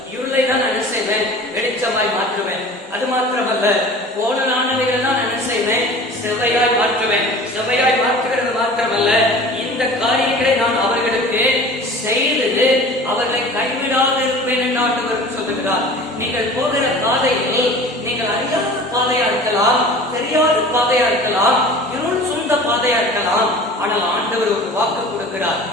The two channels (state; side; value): normal; both; correlation 0.41